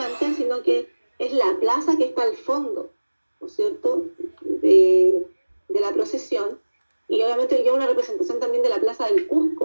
sino que es la plaza que está al fondo, ¿no es cierto?, de la procesión. Y obviamente lleva una representación también de la plaza del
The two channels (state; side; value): inverted; both; correlation -1.00